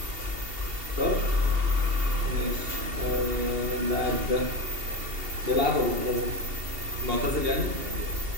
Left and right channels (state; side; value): late; left; 2.7 ms